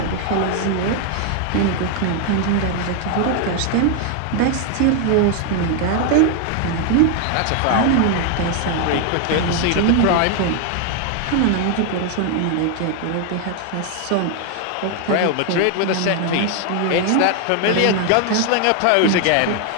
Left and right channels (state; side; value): different; both; correlation 0.01